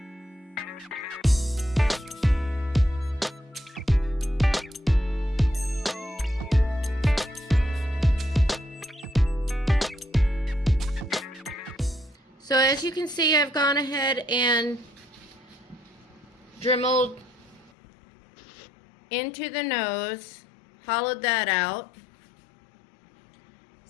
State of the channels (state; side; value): drops out; right; at 17.7 s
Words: So as you can see, I've gone ahead and dremeled into the nose, hollowed that out